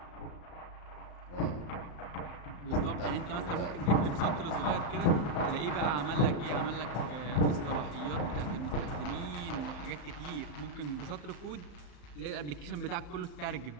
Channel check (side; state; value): right; late; 34 ms